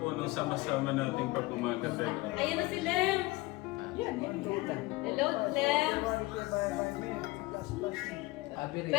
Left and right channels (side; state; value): right; quieter; 21.5 dB